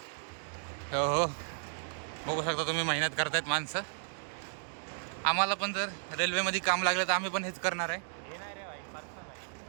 हो बघू शकता तुम्ही, मेहनत करतायत माणसं. आम्हाला पण जर रेल्वेमध्ये काम लागलं तर आम्ही पण हेच करणार आहे. हे नाही रे भाई, पर्सनल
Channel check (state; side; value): silent; left; digital silence